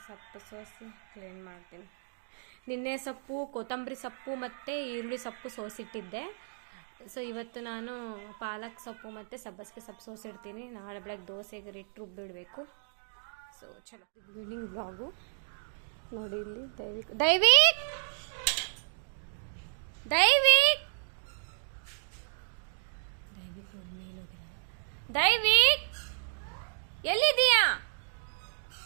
ಸೊಪ್ಪು ಸೋಸಿ ಕ್ಲೀನ್ ಮಾಡ್ತೀನಿ. ನಿನ್ನೆ ಸೊಪ್ಪು, ಕೊತ್ತಂಬರಿ ಸೊಪ್ಪು ಮತ್ತು ಈರುಳ್ಳಿ ಸೊಪ್ಪು ಸೋಸಿಟ್ಟಿದ್ದೆ. ಸೊ ಇವತ್ತು ನಾನು ಪಾಲಕ್ ಸೊಪ್ಪು ಮತ್ತು ಸಬ್ಬಸಿಗೆ ಸೊಪ್ಪು ಸೋಸಿಡ್ತೀನಿ. ನಾಳೆ ಬೆಳಗ್ಗೆ ದೋಸೆಗೆ ಹಿಟ್ಟು ರುಬ್ಬಿಡಬೇಕು. ಸೊ ಚಲೋ ಈವ್ನಿಂಗ್ ಬ್ಲಾಗು ನೋಡಿ. ಇಲ್ಲಿ ದೈವಿಕ್ ದೈವಿಕ್ ದೈವಿಕ್ ದೈವಿಕ್ ನೋಡಿ ಮೇಲೆ ಹೋಗಿದ್ದಾನೆ. ದೈವಿಕ್ ಎಲ್ಲಿದ್ದೀಯಾ?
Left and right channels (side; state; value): left; silent; digital silence